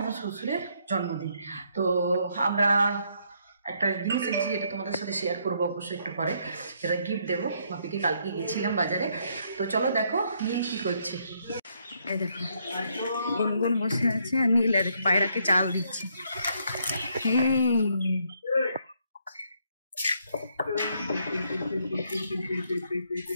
শ্বশুরের জন্মদিন, তো আমরা একটা জিনিস এনেছি, এটা তোমাদের সাথে শেয়ার করবো অবশ্যই একটু পরে। এটা গিফট দেবো বাপিকে, কালকে গেছিলাম বাজারে। তো চলো দেখো নীল কি করছে। এই দেখো গুনগুন বসে আছে আর নীল পায়রাকে চাল দিচ্ছে।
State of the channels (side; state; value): both; inverted; correlation -0.72